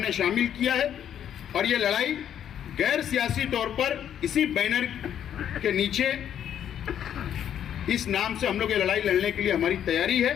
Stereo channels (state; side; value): quieter; right; 9.7 dB